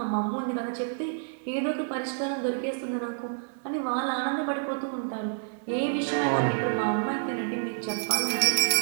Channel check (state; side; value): silent; left; 59 dB below the other